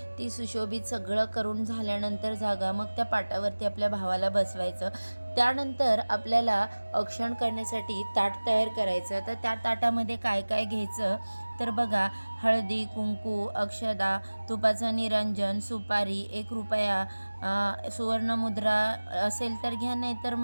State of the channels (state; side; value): inverted; both; correlation -1.00